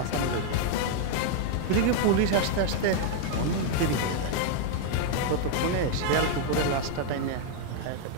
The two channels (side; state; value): both; different; correlation 0.00